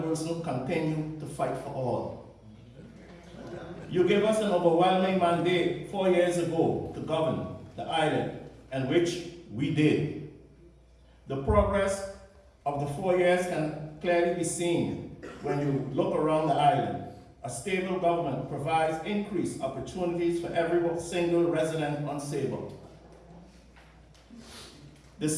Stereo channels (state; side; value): identical; both; correlation 1.00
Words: will continue to fight for all. You gave us an overwhelming mandate 4 years ago to govern the island, and which we did. The progress of the 4 years can clearly be seen when you look around the island. A stable government provides increased opportunities for every single resident on Sable. The